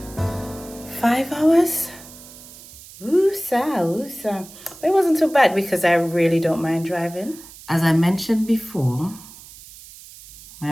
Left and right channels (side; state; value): right; noise; hiss, 19 dB below the sound